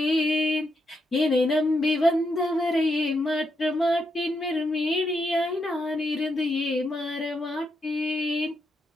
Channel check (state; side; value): normal; both; correlation 0.81